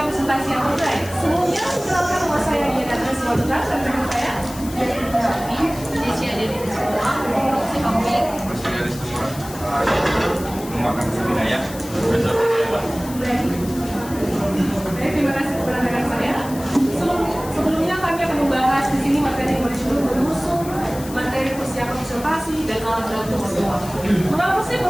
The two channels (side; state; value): left; noise; hiss, 15 dB below the sound